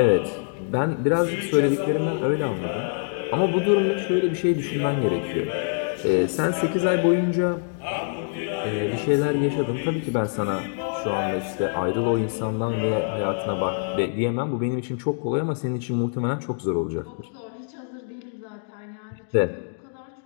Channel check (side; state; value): right; silent; digital silence